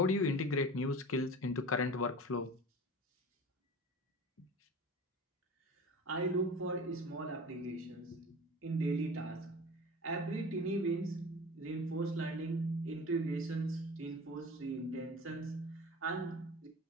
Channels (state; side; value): normal; both; correlation 0.36